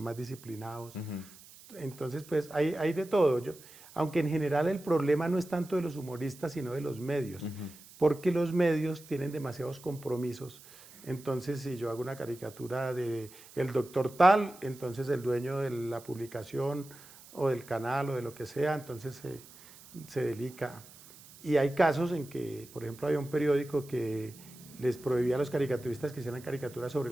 más disciplinados. Entonces, pues hay de todo. Aunque en general el problema no es tanto de los humoristas, sino de los medios, porque los medios tienen demasiados compromisos. Entonces, si yo hago una caricatura de el doctor tal, entonces el dueño de la publicación o del canal o de lo que sea, entonces se delica. Y hay casos en que, por ejemplo, había un periódico que les prohibía a los caricaturistas que hicieran caricaturas sobre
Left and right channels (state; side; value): noise; right; hiss, 21 dB below the sound